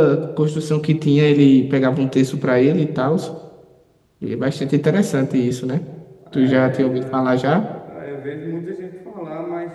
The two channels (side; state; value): both; identical; correlation 1.00